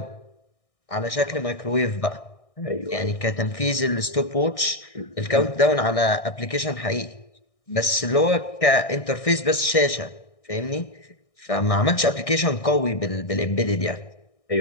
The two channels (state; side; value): late; right; 1.6 ms